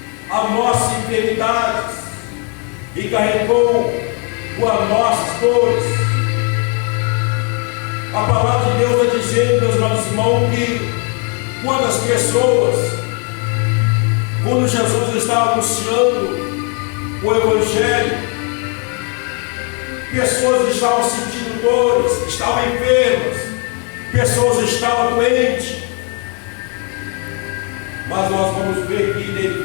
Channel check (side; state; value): right; quieter; 36.6 dB